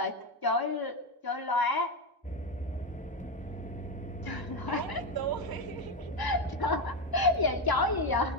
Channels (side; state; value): both; normal; correlation 0.12